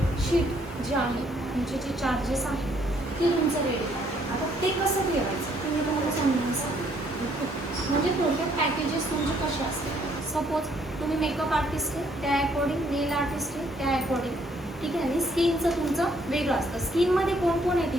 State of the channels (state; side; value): normal; both; correlation 0.67